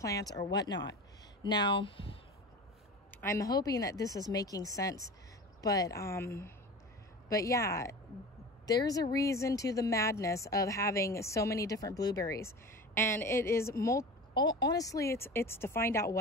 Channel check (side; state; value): both; normal; correlation 0.34